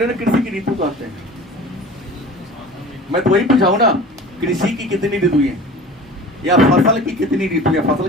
की ऋतु कहते हैं। मैं तो वही पूछाऊं ना, कृषि की कितनी ऋतु है या फसल की कितनी ऋतु है? फसल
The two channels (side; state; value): both; normal; correlation 0.40